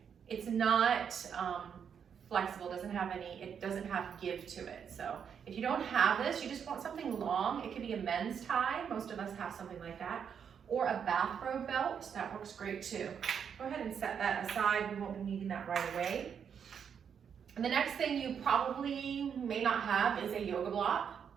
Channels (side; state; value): left; quieter; 7.5 dB